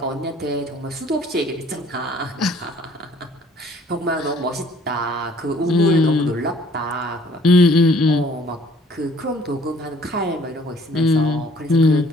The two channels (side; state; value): both; normal; correlation 0.57